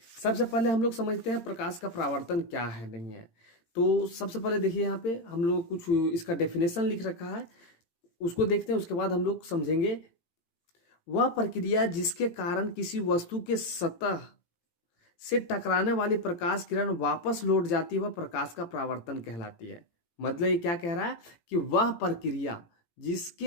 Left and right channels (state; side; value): late; right; 18 ms